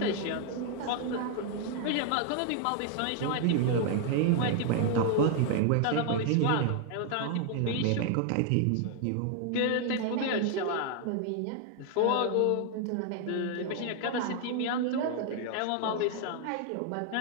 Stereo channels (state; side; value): different; both; correlation 0.00